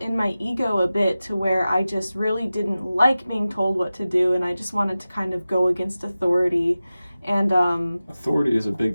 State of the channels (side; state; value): both; inverted; correlation -0.95